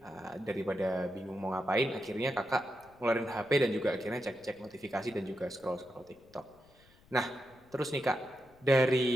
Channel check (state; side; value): noise; left; rumble, 28 dB below the sound